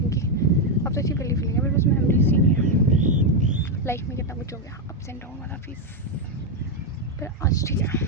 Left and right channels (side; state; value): both; normal; correlation 0.04